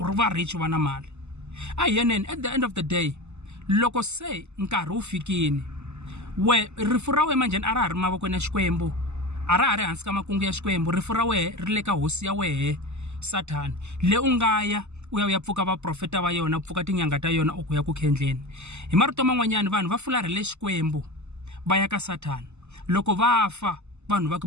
ri va rich va na mali. A yeneni at the end of the day loko se nkarhi wu fikini rifu ra wena manjhani a ra ha ri mavokweni ya Xikwembu, a ra ha ri hansi ka makungu ya Xikwembu, rifu ra wena ri le ka hosi ya wehe Sathana le u nga ya u ya pfuka va profeta va yona, pfuka tinyanga ta yona u ku ya ku khendleni. Hi marito man'wanyana vanhu va fularhele Xikwembu va ya ka Sathana. Loko va fa vanhu va ka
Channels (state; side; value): late; left; 0.82 ms